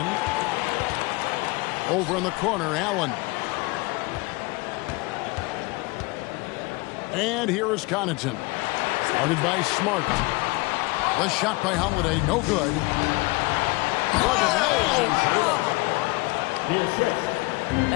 Over in the corner, Allen. And here is Connaughton. Started by Smart. The shot by Holiday, no good.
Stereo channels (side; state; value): right; quieter; 24.6 dB